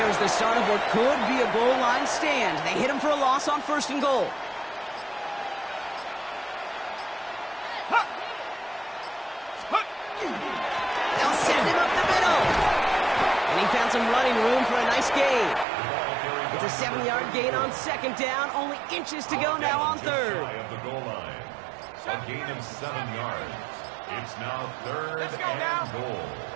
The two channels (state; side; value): drops out; left; at 15.7 s